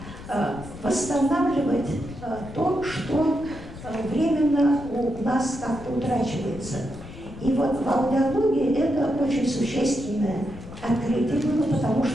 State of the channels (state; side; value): noise; left; rumble, 14 dB below the sound